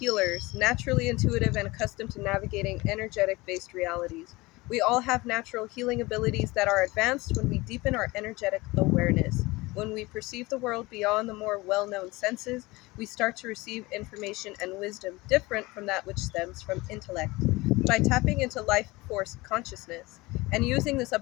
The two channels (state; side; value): quieter; right; 22.0 dB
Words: naturally intuitive and accustomed to navigating energetic-based realities. We all have natural healing abilities that are advanced when we deepen our energetic awareness. When we perceive the world beyond the more well-known senses, we start to receive information and wisdom different from that which stems from intellect. By tapping into life force consciousness and using this